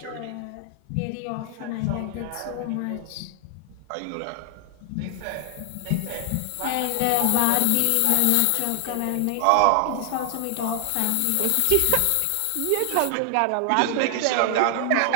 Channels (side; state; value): both; different; correlation 0.00